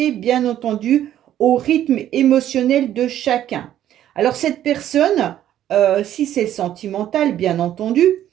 bien entendu, au rythme émotionnel de chacun. Alors cette personne, si c'est sentimental, bien entendu,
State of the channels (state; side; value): quieter; left; 11.7 dB